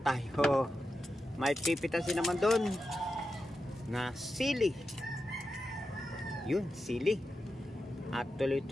tayo may pipitasin naman doon na sili. Yun, sili. At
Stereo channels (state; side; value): normal; both; correlation 0.90